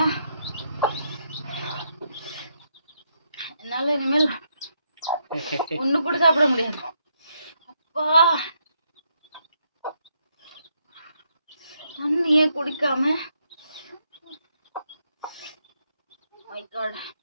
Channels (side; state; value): both; inverted; correlation -0.78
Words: என்னால இனிமேல் ஒண்ணு கூட சாப்பிட முடியாது. அப்பா தண்ணியே குடிக்காம மை காட்.